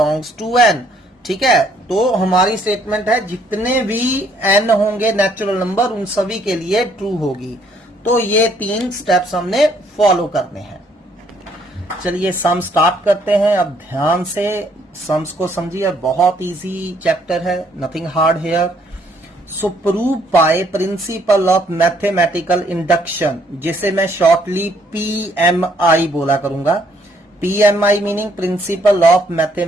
to n, ठीक है। तो हमारी स्टेटमेंट है जितने भी n होंगे नेचुरल नंबर उन सभी के लिए ट्रू होगी। तो ये 3 स्टेप्स हमने फॉलो करने हैं। चलिए सम स्टार्ट करते हैं। अब ध्यान से सम्स को समझिए, बहुत इजी चैप्टर है, nothing hard here. So prove by principle of mathematical induction, जिसे मैं शॉर्टली PMI बोला करूंगा। PMI meaning principle of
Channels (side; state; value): both; normal; correlation 0.67